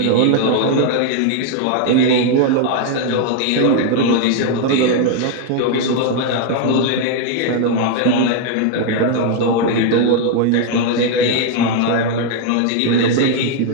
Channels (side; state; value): both; different; correlation 0.00